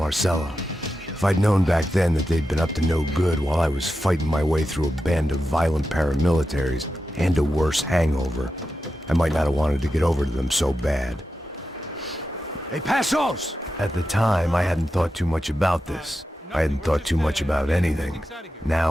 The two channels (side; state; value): both; normal; correlation 0.90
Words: If I'd known back then that they'd been up to no good while I was fighting my way through a band of violent paramilitaries and a worse hangover, I might not have wanted to get over to them so bad. Hey, Passos! At the time, I hadn't thought too much about this. I hadn't thought too much about anything.